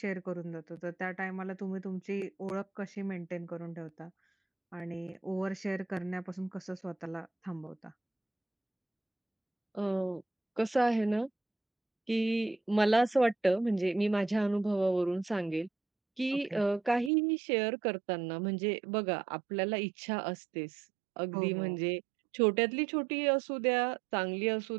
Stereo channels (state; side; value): drops out; left; at 17.1 s